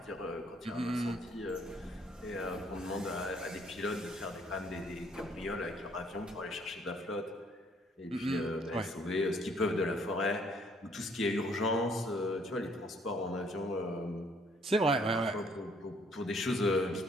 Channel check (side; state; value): both; normal; correlation 0.64